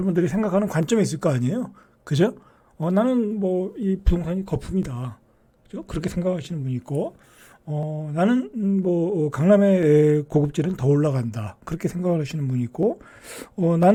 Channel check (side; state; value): both; identical; correlation 1.00